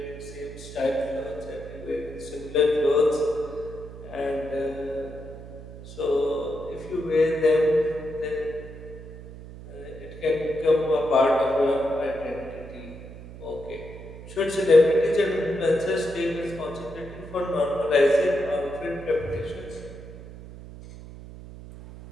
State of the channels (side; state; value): right; noise; hum, 14 dB below the sound